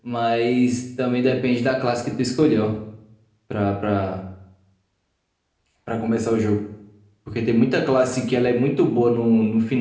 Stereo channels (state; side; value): identical; both; correlation 1.00